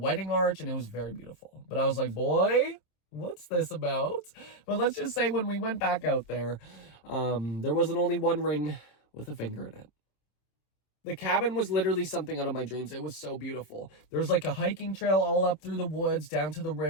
arch, and it was very beautiful. But I was like, boy, what's this about? But let's just say when we went back out there, there wasn't only one ring with a finger in it. The cabin was literally something out of my dreams. It was so beautiful. There's, like, a hiking trail all up through the woods, down to the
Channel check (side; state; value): right; late; 27 ms